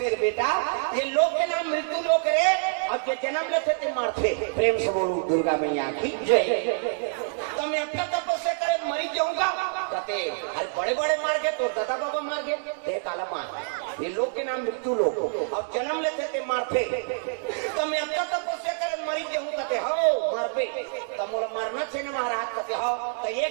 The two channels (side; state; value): left; silent; digital silence